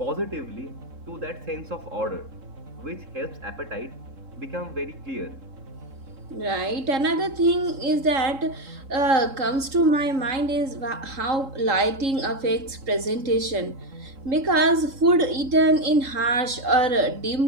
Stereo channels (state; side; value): late; left; 3.7 ms